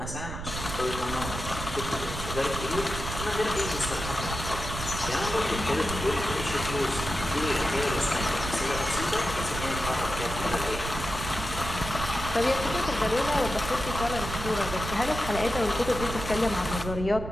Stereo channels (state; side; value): noise; right; rumble, 7 dB below the sound